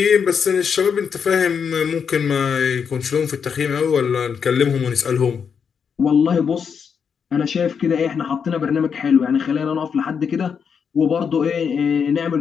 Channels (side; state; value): right; quieter; 6.7 dB